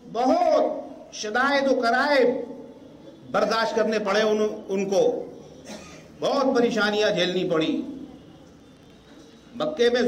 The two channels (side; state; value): both; identical; correlation 1.00